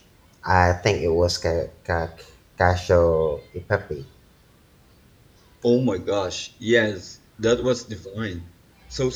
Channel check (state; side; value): identical; both; correlation 1.00